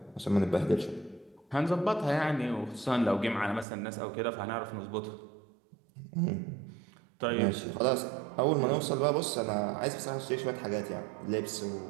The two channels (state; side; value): drops out; left; at 3.7 s